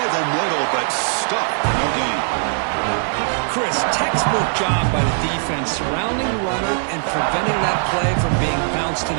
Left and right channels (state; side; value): silent; left; digital silence